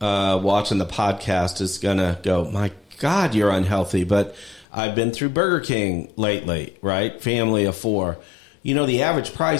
watching the podcast is going to go, my God, you're unhealthy. But I've been through Burger King lately, right? Family of 4. The average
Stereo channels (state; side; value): drops out; right; at 4.7 s